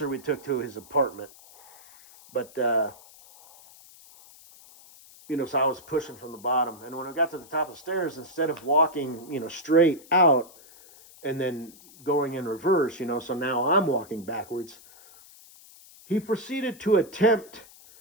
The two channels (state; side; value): noise; left; hiss, 23 dB below the sound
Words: we took to his apartment, but so I was pushing from the bottom, and when we got to the top of the stairs, instead of walking straight out and then going in reverse, so now I'm walking backwards, he proceeded to attempt